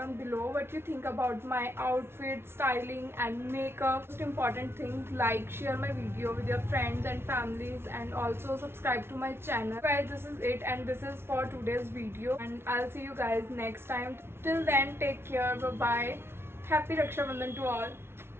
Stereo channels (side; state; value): left; late; 0.12 ms